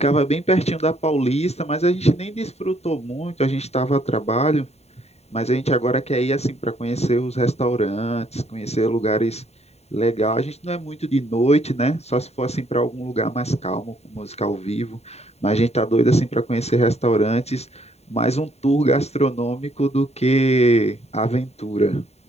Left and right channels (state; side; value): late; right; 0.31 ms